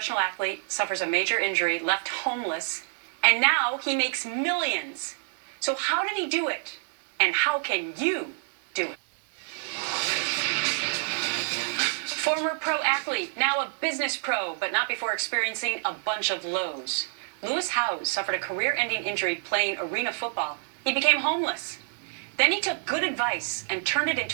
athlete, suffers a major injury, left homeless, and now he makes millions. So how did he do it? And how can you do it? Former pro athlete, now a business pro, but not before experiencing a bunch of lows. Lewis Howes suffered a career-ending injury playing arena football. He became homeless. Then he took good advice and turned it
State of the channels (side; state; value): left; silent; 60 dB below the other